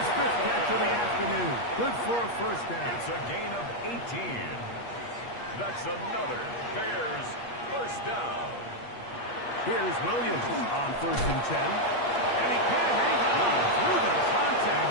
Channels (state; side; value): late; right; 8.4 ms